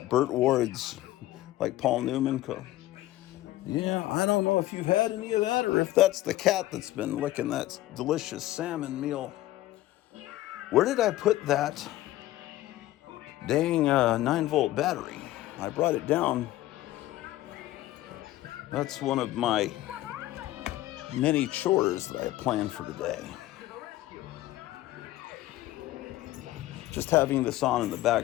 it Burt Ward's, like Paul Newman. Yeah, I don't know if you've had any of that or if that's the cat that's been licking that delicious salmon meal. Where did I put that dang 9-volt battery? I brought it down. That's one of my many chores that I planned for today. Just having this on in the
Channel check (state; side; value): quieter; right; 15.7 dB